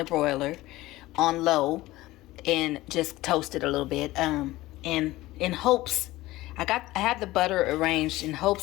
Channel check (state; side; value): quieter; right; 17.9 dB